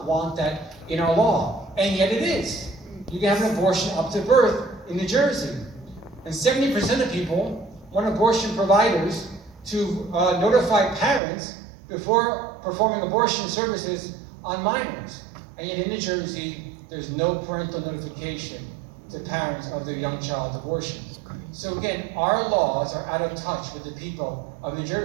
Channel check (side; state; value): left; drops out; at 11.2 s